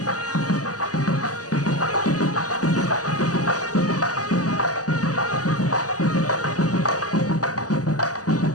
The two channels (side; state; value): right; late; 0.67 ms